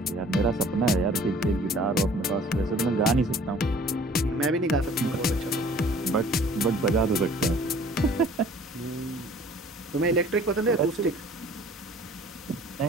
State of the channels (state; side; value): normal; both; correlation 0.51